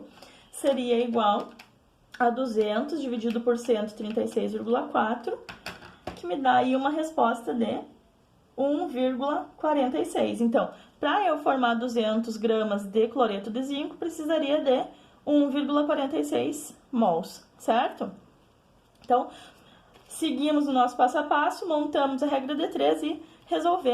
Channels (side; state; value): both; identical; correlation 1.00